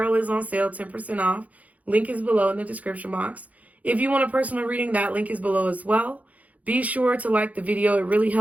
is on sale, 10% off. Link is below in the description box. If you want a personal reading, that link is below as well. Be sure to like the video. It really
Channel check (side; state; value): left; late; 0.072 ms